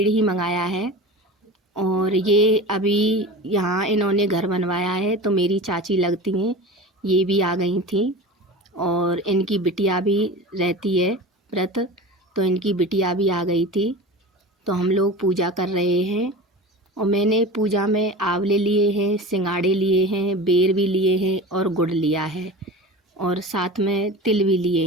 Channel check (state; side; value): normal; both; correlation 0.33